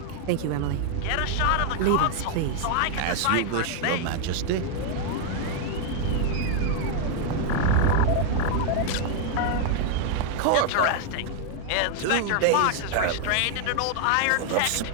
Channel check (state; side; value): different; both; correlation 0.00